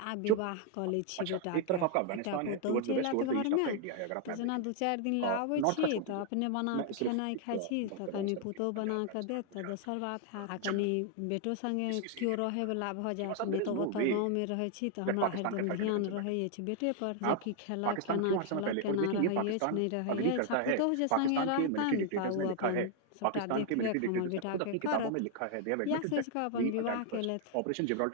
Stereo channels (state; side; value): different; both; correlation 0.00